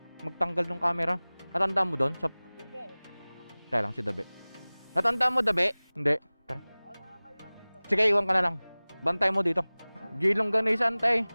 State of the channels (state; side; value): inverted; both; correlation -1.00